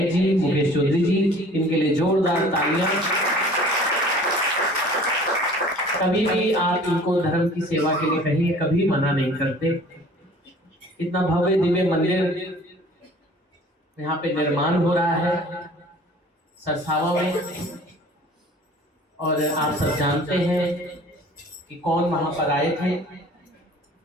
जी मुकेश चौधरी जी, इनके लिए जोरदार तालियां। कभी भी आप इनको धर्म की सेवा के लिए कहीं कभी मना नहीं करते। इतना भव्य दिव्य मंदिर यहाँ पे निर्माण हो रहा है सरसावा में, और आप सब जानते हैं कि कौन वहां पर आए थे।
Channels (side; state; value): both; normal; correlation 0.49